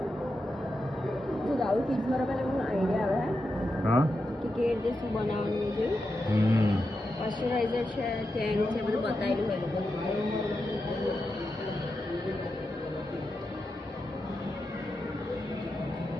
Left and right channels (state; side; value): normal; both; correlation 0.88